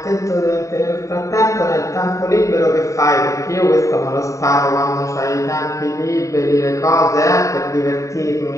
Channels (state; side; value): late; right; 0.16 ms